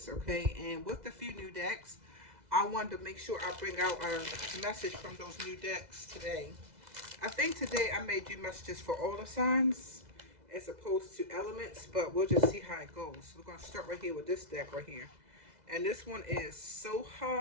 okay? And with the few new decks, I wanted to make sure I bring out a message from those new decks today. I think today I may do messages for all the signs as opposed to elements, but we'll just see how it goes. We're going to start right here with this deck right here. And this one is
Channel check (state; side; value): late; left; 2.0 ms